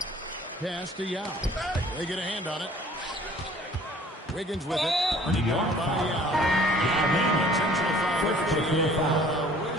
Pass to Yao. They get a hand on it. Wiggins with it. Earning down by Yao. Intentional foul.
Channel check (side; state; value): both; normal; correlation 0.53